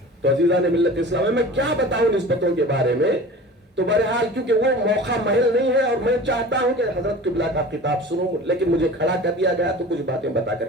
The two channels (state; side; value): normal; both; correlation 0.39